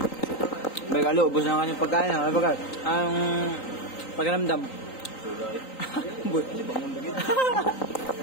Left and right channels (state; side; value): late; right; 3.9 ms